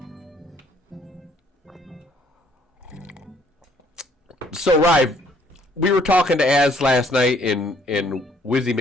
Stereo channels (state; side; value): normal; both; correlation 0.63